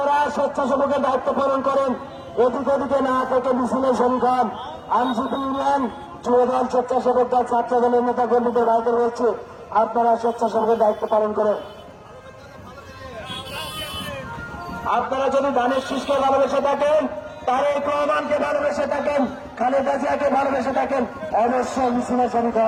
স্বেচ্ছাসেবকের দায়িত্ব পালন করেন। এদিক ওদিকে না থেকে মিছিলে শরীক হন। আইনজীবী ইউনিয়ন, যুবদল, স্বেচ্ছাসেবক দল, ছাত্র দলের নেতা কর্মীদের ভাইদের বলছে আপনারা স্বেচ্ছাসেবকের দায়িত্ব পালন করেন। আপনারা যদি ধানের শীষকে ভালোবেসে থাকেন, তারেক রহমানকে ভালোবেসে থাকেন, খালেদা জিয়াকে ভালোবেসে থাকেন, অবশ্যই মিছিলে শরীক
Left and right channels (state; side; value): identical; both; correlation 1.00